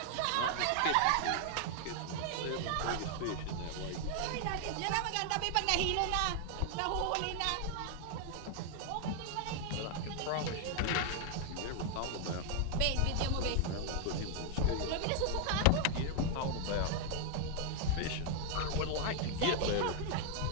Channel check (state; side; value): different; both; correlation 0.00